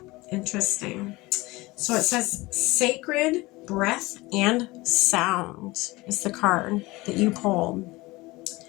Interesting. So it says sacred breath and sound is the card that you pulled.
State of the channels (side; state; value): right; quieter; 21.3 dB